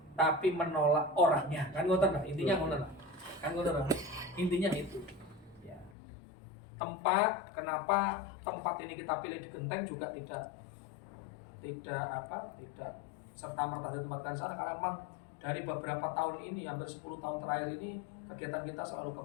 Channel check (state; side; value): drops out; right; at 5.9 s